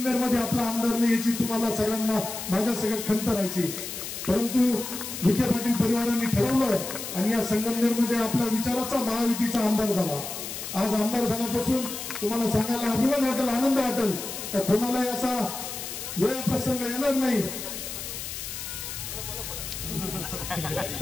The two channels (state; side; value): noise; left; hiss, 7 dB below the sound